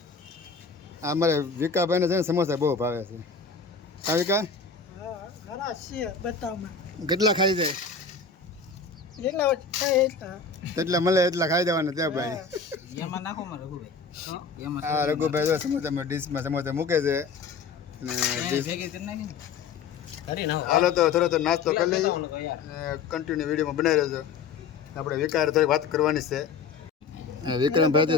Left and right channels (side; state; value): right; quieter; 5.3 dB